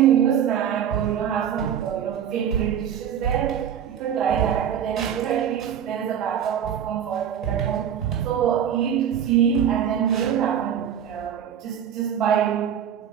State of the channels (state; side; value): quieter; left; 9.0 dB